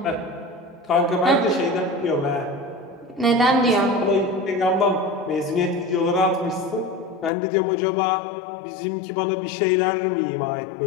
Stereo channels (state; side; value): drops out; right; at 7.3 s